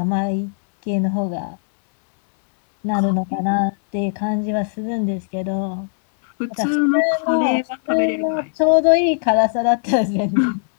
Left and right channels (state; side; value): silent; right; digital silence